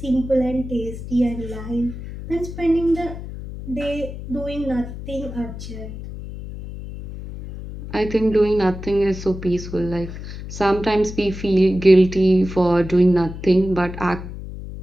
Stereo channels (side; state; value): left; noise; hum, 10 dB below the sound